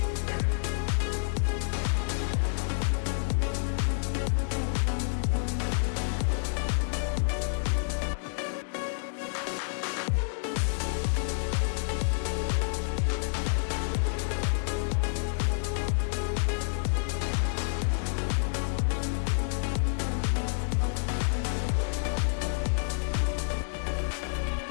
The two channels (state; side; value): silent; right; 59 dB below the other